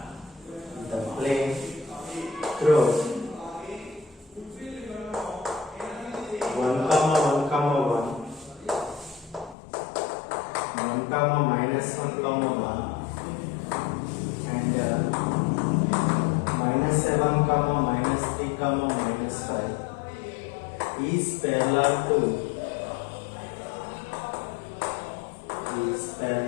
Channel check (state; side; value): drops out; right; at 9.6 s